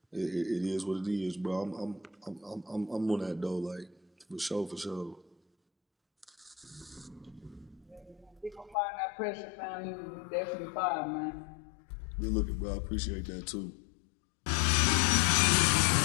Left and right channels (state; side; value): drops out; right; at 8.8 s